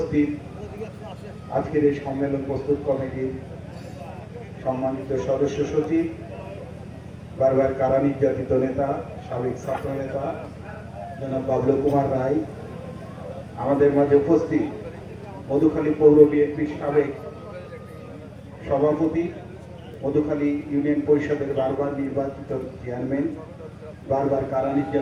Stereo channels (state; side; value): identical; both; correlation 1.00